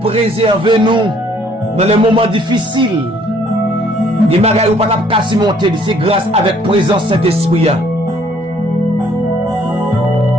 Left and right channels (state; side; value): normal; both; correlation 0.62